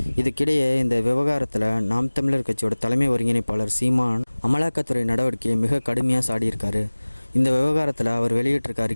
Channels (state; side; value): inverted; both; correlation -1.00